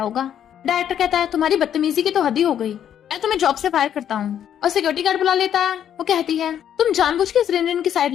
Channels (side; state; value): right; quieter; 9.7 dB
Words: डायरेक्टर कहता है तुम्हारी बदतमीजी की तो हद ही हो गई, मैं तुम्हें जॉब से फायर करता हूँ। और सिक्योरिटी गार्ड बुला लेता है। वो कहती है तुम जानबूझ के इस रिनरिन की साइड